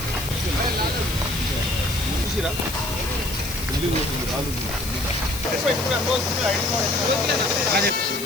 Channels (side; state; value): left; noise; hiss, 9 dB below the sound